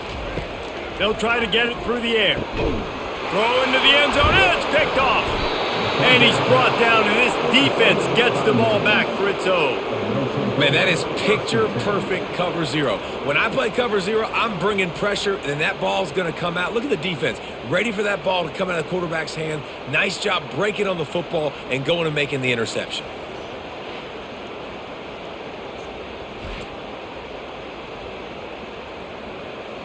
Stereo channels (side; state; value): both; identical; correlation 1.00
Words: They'll try to get it through the air. Throw into the end zone, and it's picked off. And he's brought down, and this defense gets the ball back for its own. Man, that is picture-perfect cover zero. When I play cover zero, I'm bringing pressure, and that ball's going to come out. Look at the defense. Ready for that ball to come out of the quarterback's hand. Nice job breaking on the football and going and making the interception.